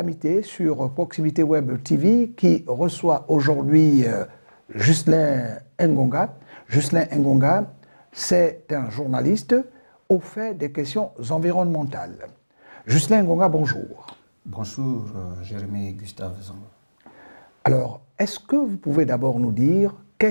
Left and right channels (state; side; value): inverted; both; correlation -1.00